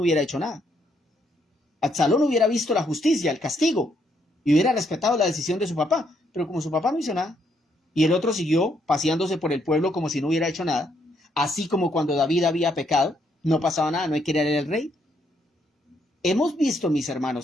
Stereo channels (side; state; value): both; normal; correlation 0.73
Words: hecho nada. Absalón hubiera visto la justicia, el castigo, y hubiera respetado la decisión de su papá. Pero como su papá no hizo nada, y el otro siguió paseándose por el pueblo como si no hubiera hecho nada, así como cuando David había pecado, no pasaba nada, no hay que ir al rey. Hemos visto, mis